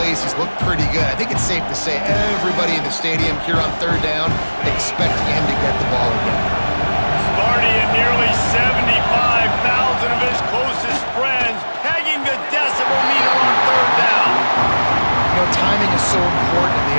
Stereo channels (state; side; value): inverted; both; correlation -1.00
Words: He's looked pretty good. I think it's safe to say everybody in the stadium here on 3rd down expecting him to get the ball again. Sparty and nearly 75,000 of his closest friends pegging the decibel meter on 3rd down. You know, timing is so important in the